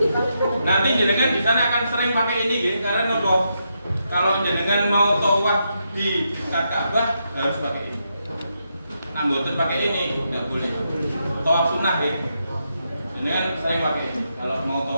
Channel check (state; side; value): inverted; both; correlation -0.82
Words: Nanti jenengan di sana akan sering pakai ini ya, karena nopo. Kalau jenengan mau tawaf di dekat Ka'bah harus pakai ini. Nah, mboten pakai ini nggak boleh. Tawaf sunnah ya. Jenengan sering pakai ini kalau mau